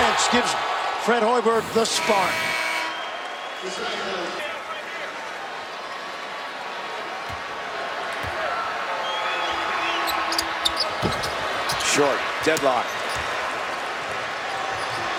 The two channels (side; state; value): both; identical; correlation 1.00